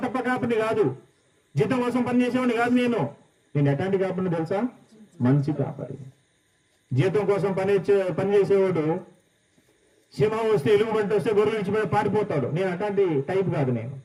తప్ప కాపరిని కాదు, జీతం కోసం పనిచేసేవాడిని కాదు. నేను ఎట్లాంటి కాపరిని తెలుసా? మంచి కాపరి. జీతం కోసం పనిచేసేవాడు సింహం వస్తే, ఎలుగుబంటి వస్తే గొర్రెలు ఇచ్చిపోయి పారిపోతాడు. నేను అట్లాంటి టైప్ కాదు.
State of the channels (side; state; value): both; identical; correlation 1.00